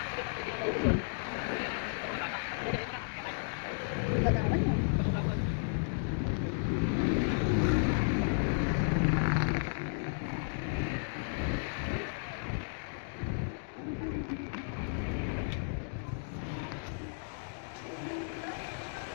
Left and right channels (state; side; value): silent; right; digital silence